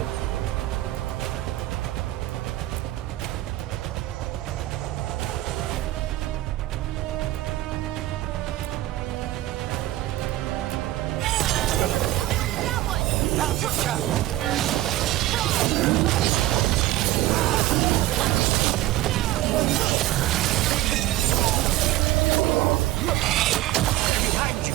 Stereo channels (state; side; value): quieter; left; 15.7 dB